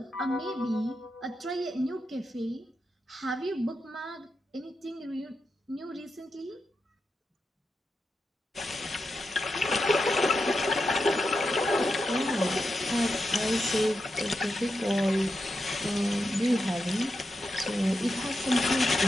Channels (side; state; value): both; normal; correlation 0.88